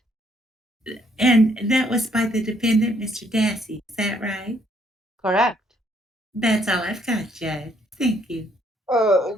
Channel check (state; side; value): normal; both; correlation 0.68